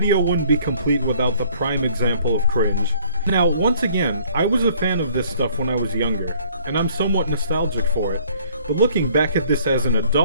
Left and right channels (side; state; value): both; inverted; correlation -0.59